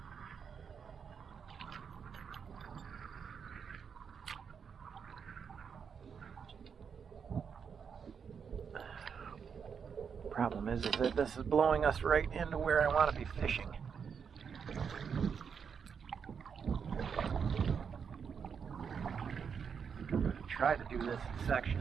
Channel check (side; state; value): left; quieter; 6.7 dB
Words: Problem is that this is blowing us right into where I want to be fishing. Try to do this in